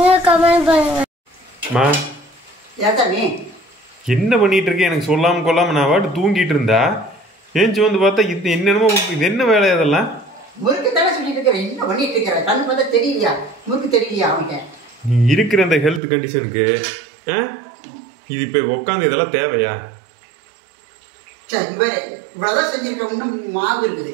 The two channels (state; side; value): drops out; left; at 16.0 s